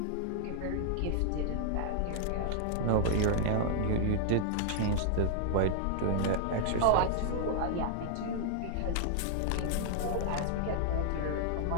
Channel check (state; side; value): different; both; correlation -0.01